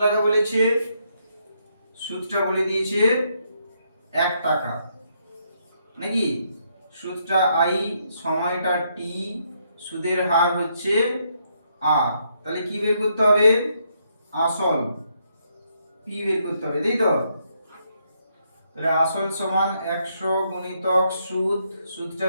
টাকা বলেছে, সুদটা বলে দিয়েছে 1 টাকা নাকি। সুদটা আই, সময়টা টি, সুদের হার হচ্ছে আর। তাহলে কি বের করতে হবে, আসল পি বের করতে হবে, তাই তো। তাহলে আসল সমান 100 গুণিতক সুদ, সুদটা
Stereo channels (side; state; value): both; inverted; correlation -0.75